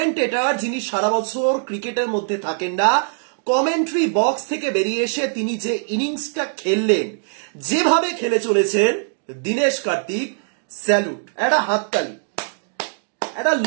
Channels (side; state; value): left; silent; digital silence